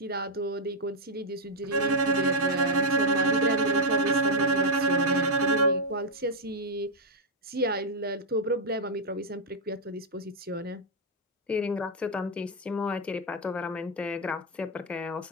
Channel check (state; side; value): normal; both; correlation -0.03